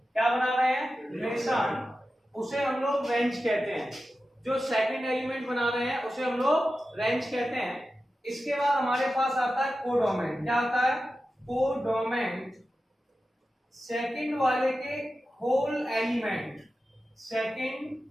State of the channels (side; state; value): both; normal; correlation 0.93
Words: क्या बना रहे हैं, रिलेशन, उसे हम लोग रेंज कहते हैं। जो सेकंड एलिमेंट बना रहे हैं उसे हम लोग रेंज कहते हैं। इसके बाद हमारे पास आता है कोडोमेन। क्या आता है, कोडोमेन, सेकंड वाले के होल एलिमेंट,